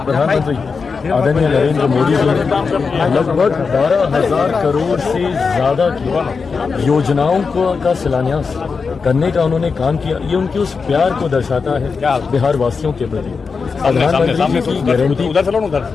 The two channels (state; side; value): quieter; right; 5.0 dB